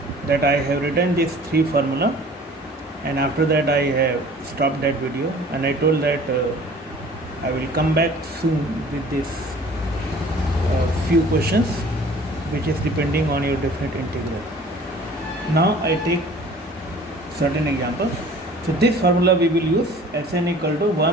that I have written this three formula, and after that I have stopped that video and I told that I will come back soon with this few questions which is depending on your definite integral. Now I take certain examples. So this formula we will use Sn equal to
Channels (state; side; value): normal; both; correlation 0.49